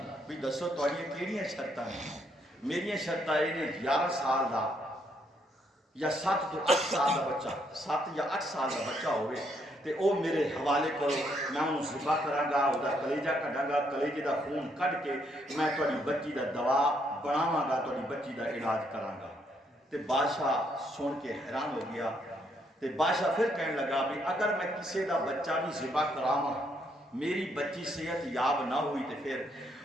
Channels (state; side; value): normal; both; correlation 0.73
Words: بھی دسو تواڈیاں کیڑیاں شرطاں ہیں میری شرطاں یہ نے 11 سال دا یا 7 تو 8 سال دا بچہ 7 یا 8 سال دا بچہ ہوئے تے او میرے حوالے کرو میں انہوں ذبح کراں گا او دا کلیجہ کڈاں گا کلیجے دا خون کڈ کے میں تواڈی بچی دا دوا بناواں گا تواڈی بچی دا علاج کراں گا تے بادشاہ سن کے حیران ہو گیا تے بادشاہ پھر کہنے لگا بھی اگر میں کسی دا بچہ بھی ذبح کراواں میری بچی صحت یاب نہ ہوئی تے پھر